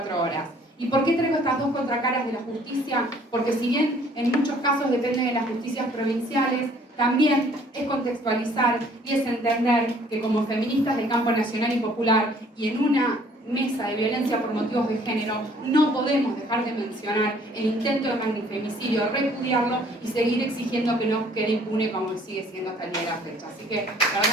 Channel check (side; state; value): both; normal; correlation 0.58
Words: horas. ¿Y por qué traigo estas dos contracaras de la justicia? Porque si bien en muchos casos dependen de las justicias provinciales, también es contextualizar y es entender que como feministas del campo nacional y popular y en una mesa de violencia por motivos de género, no podemos dejar de mencionar el intento de magnifemicidio, repudiarlo y seguir exigiendo que no quede impune como sigue siendo hasta el día de la fecha. Así que, la